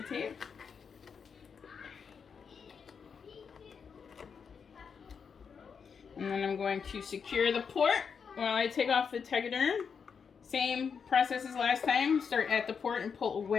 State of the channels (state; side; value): quieter; right; 6.3 dB